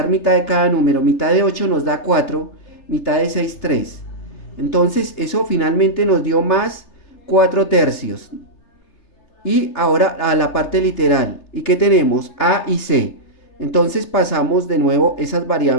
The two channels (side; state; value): right; late; 3.3 ms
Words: mitad de cada número. Mitad de 8 nos da 4. Mitad de 6, 3. Entonces eso finalmente nos dio más 4/3. Y ahora a la parte literal. ¿Y qué tenemos? A y C. Entonces pasamos de nuevo esas